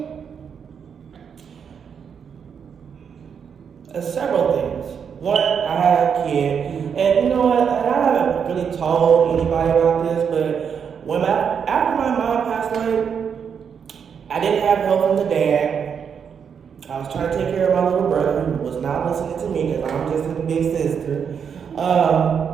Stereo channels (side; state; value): left; quieter; 7.1 dB